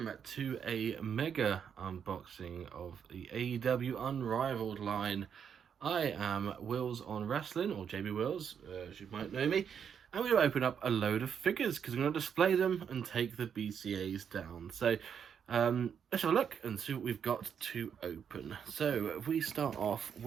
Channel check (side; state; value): left; quieter; 7.6 dB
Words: to a mega unboxing of the AEW Unrivaled line. I am Wills on Wrestling, or JB Wills, as you might know me, and we're going to open up a load of figures because we're going to display them and take the BCAs down. So let's have a look and see what we've got to open. So if we start off